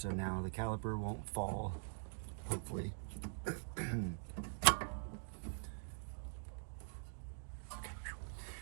now the caliper won't fall, hopefully.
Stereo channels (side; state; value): left; silent; digital silence